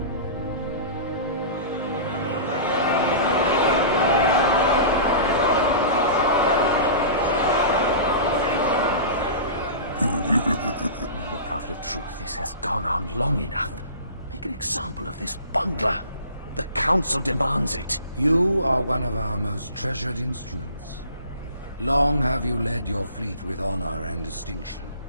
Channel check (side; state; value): both; inverted; correlation -0.38